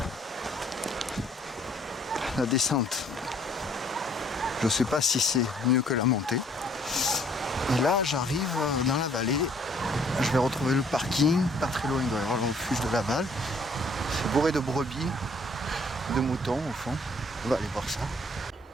la descente, je ne sais pas si c'est mieux que la montée. Et là, j'arrive dans la vallée. Je vais retrouver le parking. Pas très loin, il doit y avoir le refuge de Laval. C'est bourré de brebis, de moutons au fond. On va aller voir ça.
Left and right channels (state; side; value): normal; both; correlation 0.60